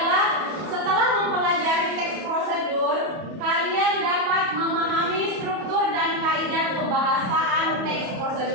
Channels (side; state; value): left; late; 31 ms